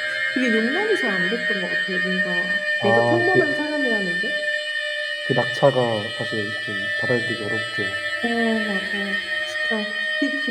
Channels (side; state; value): both; identical; correlation 1.00